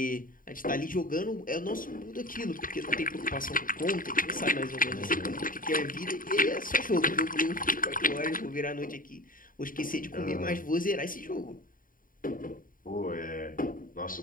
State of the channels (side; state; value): right; late; 0.40 ms